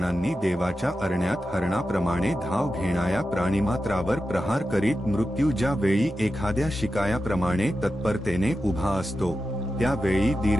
देवाच्या अरण्यात हरणाप्रमाणे धाव घेणाऱ्या प्राणिमात्रावर प्रहार करीत मृत्यू ज्या वेळी एखाद्या शिकायाप्रमाणे तत्परतेने उभा असतो, त्यावेळी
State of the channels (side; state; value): both; normal; correlation 0.91